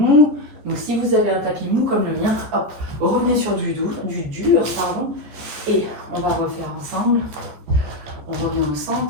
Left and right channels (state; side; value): late; left; 14 ms